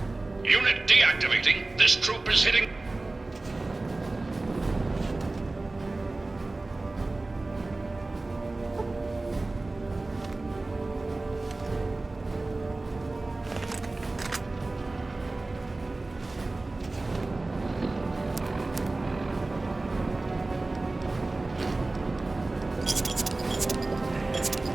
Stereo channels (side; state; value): left; quieter; 3.1 dB